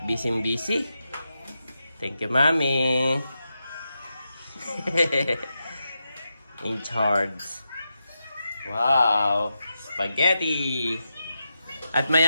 busy. Thank you, Mami. In charge. Wow. spaghetti. At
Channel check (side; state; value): both; inverted; correlation -0.88